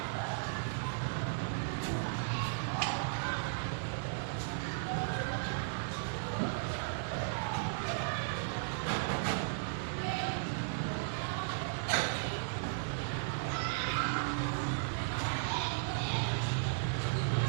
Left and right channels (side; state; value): left; silent; 54 dB below the other